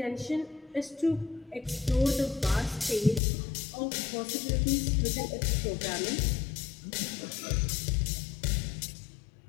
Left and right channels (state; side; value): drops out; right; at 3.2 s